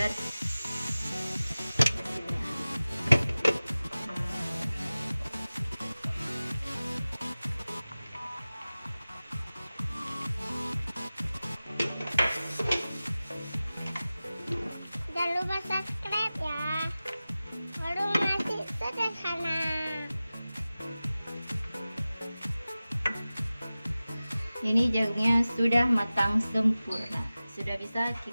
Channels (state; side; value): inverted; both; correlation -0.97